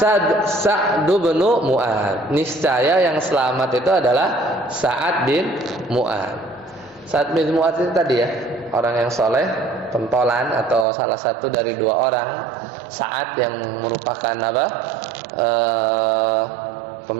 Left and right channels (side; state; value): left; drops out; at 10.9 s